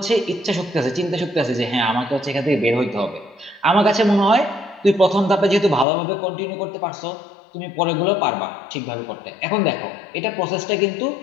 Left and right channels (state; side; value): drops out; right; at 5.9 s